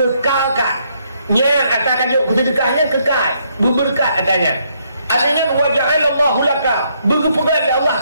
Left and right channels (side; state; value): both; inverted; correlation -0.72